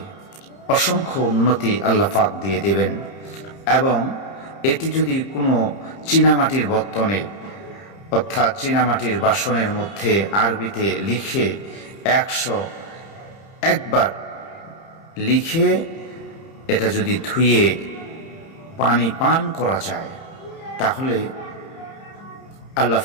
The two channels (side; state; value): right; late; 30 ms